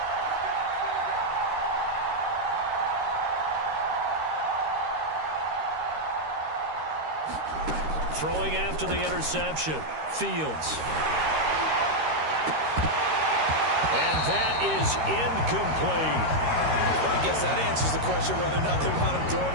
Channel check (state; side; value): late; left; 13 ms